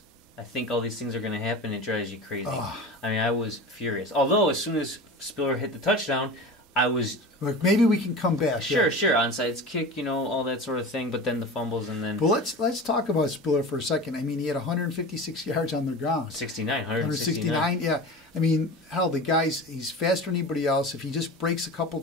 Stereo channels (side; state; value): both; normal; correlation 0.32